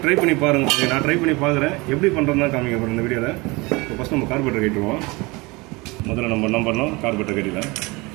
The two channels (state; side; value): quieter; left; 24.8 dB